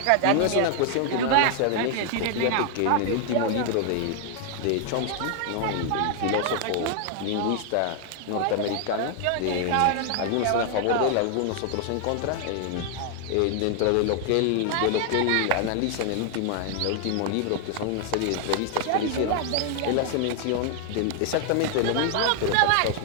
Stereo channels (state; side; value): different; both; correlation 0.00